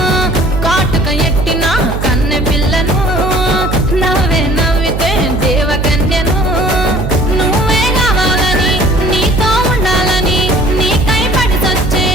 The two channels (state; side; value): noise; right; hum, 4 dB below the sound